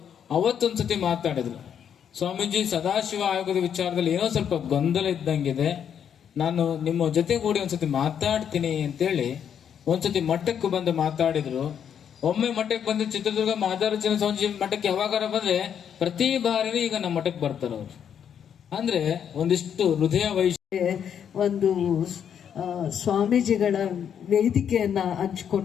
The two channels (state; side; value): quieter; right; 8.4 dB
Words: ಅವತ್ತೊಂದ್ಸತಿ ಮಾತಾಡಿದ್ರು. ಸ್ವಾಮೀಜಿ, ಸದಾಶಿವ ಆಯೋಗದ ವಿಚಾರದಲ್ಲಿ ಏನೋ ಸ್ವಲ್ಪ ಗೊಂದಲ ಇದ್ದಂಗಿದೆ, ನಾನು ನಿಮ್ಮ ಜೊತೆಗೂಡಿ ಒಂದ್ಸತಿ ಮಾತಾಡ್ತೀನಿ ಅಂತೇಳಿ ಒಂದ್ಸತಿ ಮಠಕ್ಕೆ ಬಂದು ಮಾತಾಡಿದ್ರು. ಒಮ್ಮೆ ಮಠಕ್ಕೆ ಬಂದು ಚಿತ್ರದುರ್ಗ ಮಹಾರಾಜನ ಸ್ವಾಮೀಜಿ ಮಠಕ್ಕೆ ಯಾವಾಗಾರ ಬಂದ್ರೆ ಪ್ರತಿ ಬಾರಿನೂ ಈಗ ನಮ್ಮ ಮಠಕ್ಕೆ ಬರ್ತಾರೆ ಅವ್ರು. ಅಂದ್ರೆ ಒಂದಿಷ್ಟು ಹೃದಯ ಒಂದು ಸ್ವಾಮೀಜಿಗಳ ವೇದಿಕೆಯನ್ನ